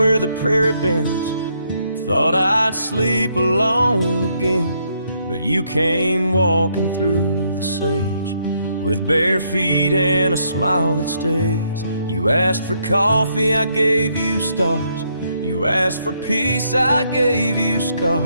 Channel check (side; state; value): both; inverted; correlation -0.74